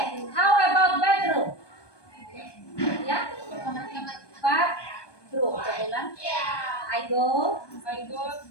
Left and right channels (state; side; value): late; right; 1.2 ms